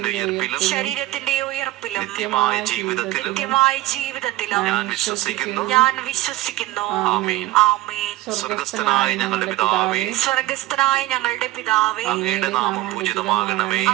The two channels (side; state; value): left; quieter; 16.7 dB